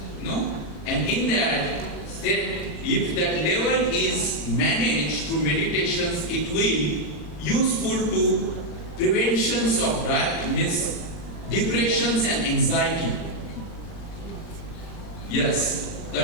No? And in that said if that level is managed through meditations, it will useful to preventions of depressions and anxiety. Yes,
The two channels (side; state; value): right; late; 40 ms